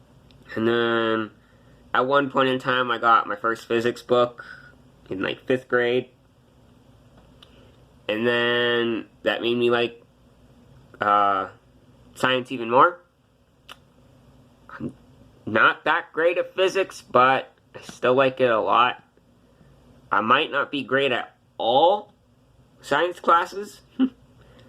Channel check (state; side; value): identical; both; correlation 1.00